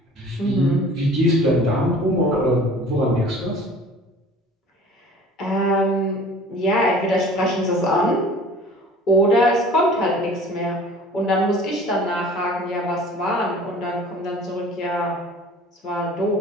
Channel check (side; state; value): both; normal; correlation 0.46